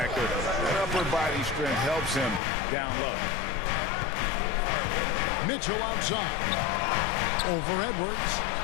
That upper body strength helps him down low. Mitchell outside. Over Edwards.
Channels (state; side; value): drops out; right; at 2.4 s